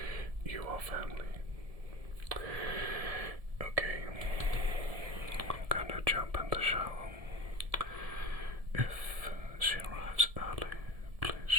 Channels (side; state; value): left; late; 1.7 ms